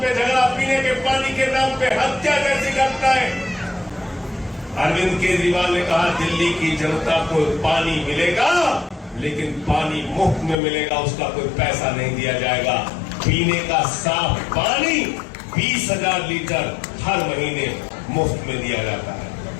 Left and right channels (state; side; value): drops out; right; at 10.6 s